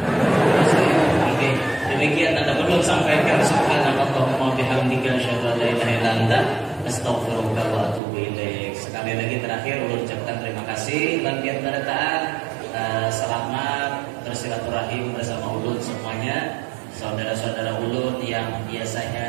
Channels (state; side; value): drops out; left; at 8.0 s